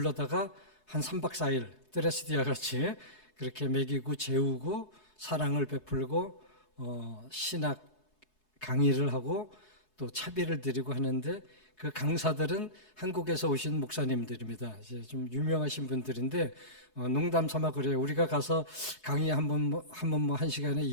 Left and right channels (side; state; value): right; late; 4.7 ms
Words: 한 3박 4일 드레스디아 같이 그렇게 먹이고 재우고 사랑을 베풀고 신학 강의를 하고 또 차비를 드리고 하는데 그 강사들은 한국에서 오신 목사님들입니다. 이제 좀 유명하신 분들인데 농담 삼아 그래요. 우리가 가서 강의 한 번 뭐 한 시간에